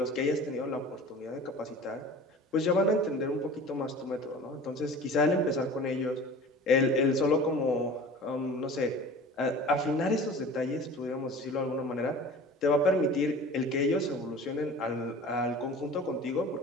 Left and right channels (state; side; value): normal; both; correlation 0.40